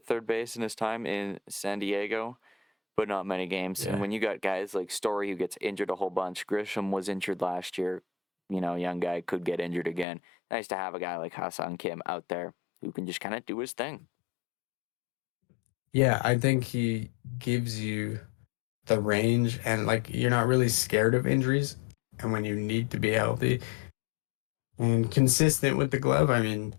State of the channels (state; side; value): drops out; right; at 10.1 s